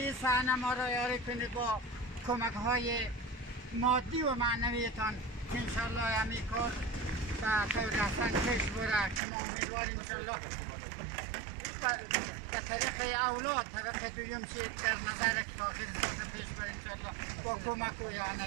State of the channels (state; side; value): drops out; left; at 9.2 s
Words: صحنه ما را یاری کنید با کمک های مادی و معنویتان که انشاءالله همین کار به طور احسن پیش بره که ما امیدواریم انشاءالله به طریق اولاد طبق دویم چی در نظر که تاخیر ساز پیش بره انشاءالله با کمک و